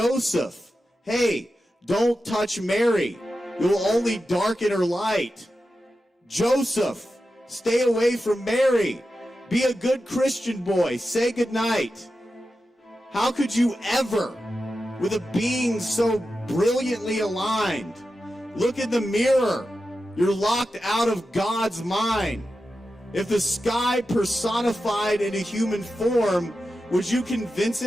hey, don't touch Mary. You'll only darken her light. Joseph, stay away from Mary. Be a good Christian boy. Say goodnight. How could you ever, with a being so brilliantly aligned, look in the mirror? You're locked out of God's mind. If the sky personified in a human form, would you convince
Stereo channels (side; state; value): both; normal; correlation 0.91